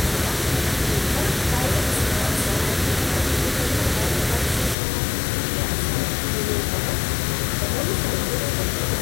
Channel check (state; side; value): drops out; right; at 4.8 s